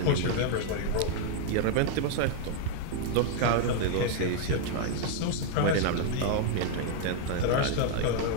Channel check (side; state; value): both; different; correlation 0.00